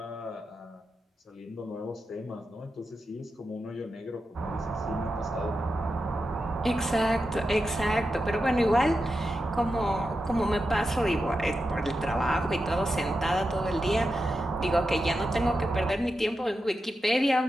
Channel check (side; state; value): both; normal; correlation 0.89